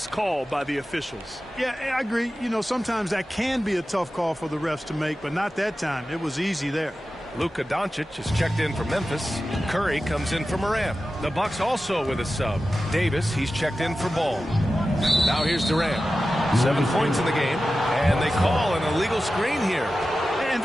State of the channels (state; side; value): normal; both; correlation 0.94